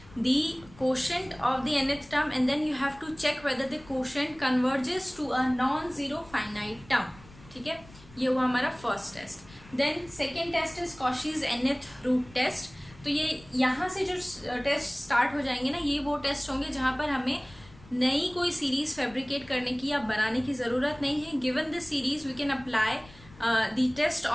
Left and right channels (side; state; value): left; noise; rumble, 22 dB below the sound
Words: the quotient of the nth term and then you have to check whether the quotient converges to a non-zero finite term. ठीक है, ये हुआ हमारा first test. Then second test is Cauchy's nth root test. तो ये यहाँ से जो टेस्ट स्टार्ट हो जाएंगे ना, ये वो टेस्ट होंगे जहाँ पर हमें नई कोई सीरीज फैब्रिकेट करने की या बनाने की ज़रूरत नहीं है. Given the series we can apply the test